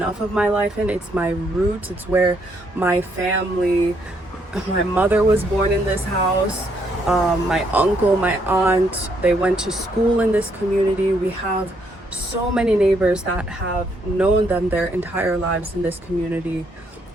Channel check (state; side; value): normal; both; correlation 0.72